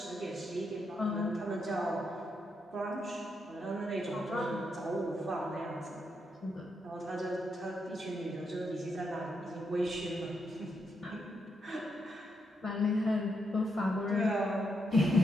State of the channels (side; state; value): both; normal; correlation 0.81